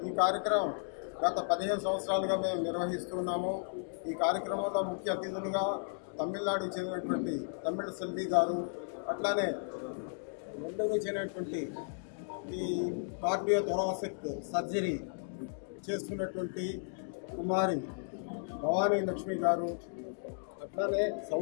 ఈ కార్యక్రమం గత 15 సంవత్సరాలుగా మేము నిర్వహిస్తున్నాము. ఈ కార్యక్రమంలో ముఖ్య అతిథులుగా తమిళనాడుకు చెందినటువంటి తమిళ సెల్వి గారు, అట్లానే నెల్లూరు చెందినటువంటి ఈ కార్డియో థొరాసిక్ సర్జరీ చేస్తున్నటువంటి కుమారి భవానీ లక్ష్మి గారు, అట్లానే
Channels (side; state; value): right; silent; digital silence